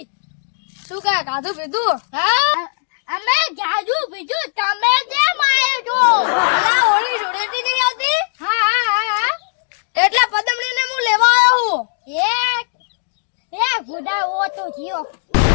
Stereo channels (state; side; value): silent; right; digital silence